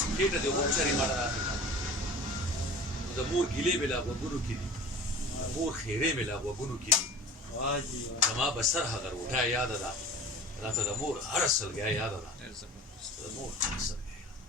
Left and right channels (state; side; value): normal; both; correlation 0.39